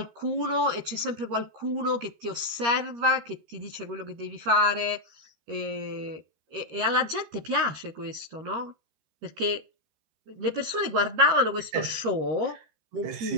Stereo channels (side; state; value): left; late; 13 ms